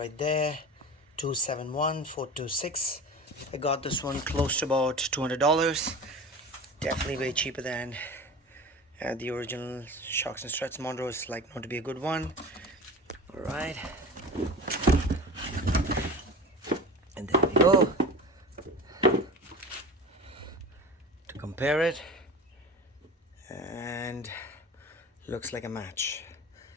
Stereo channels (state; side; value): normal; both; correlation 0.34